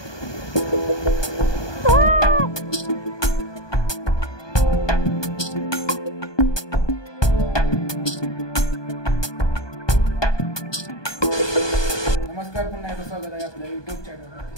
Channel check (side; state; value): right; late; 1.2 ms